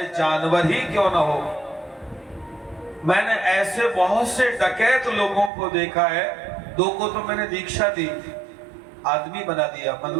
जानवर ही क्यों ना हो, मैंने ऐसे बहुत से डकैत लोगों को देखा है, 2 को तो मैंने दीक्षा दी, आदमी बना दिया,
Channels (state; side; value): drops out; left; at 5.5 s